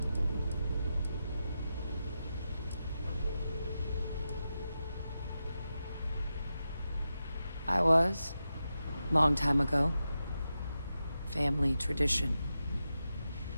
I was. Long time ago. Family tradition.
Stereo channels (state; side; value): inverted; both; correlation -0.89